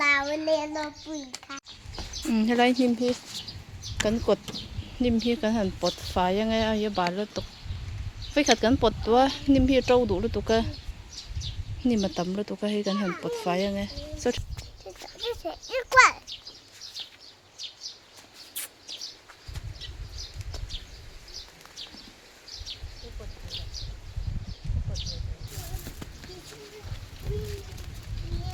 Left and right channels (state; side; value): identical; both; correlation 1.00